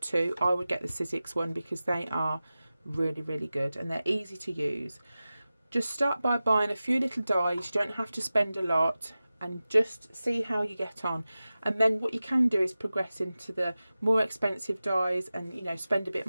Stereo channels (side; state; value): both; inverted; correlation -0.96